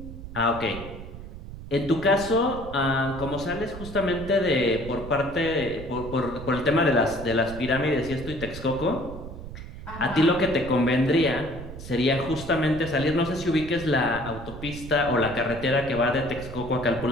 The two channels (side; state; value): right; noise; rumble, 12 dB below the sound